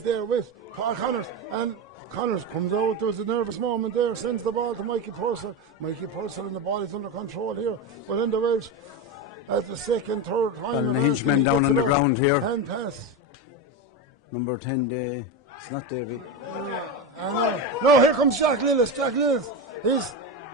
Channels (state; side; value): normal; both; correlation 0.16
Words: there with Paul Connors. And Connors comes out. There's a nervous moment there. Sends the ball to Mikey Purcell. And the ball is under control here. But in the Welsh, at the second, third time. Ballinahinch men down on the ground here. Hand pass. Number 10, it's not David. No, here comes Jack Lillis. He's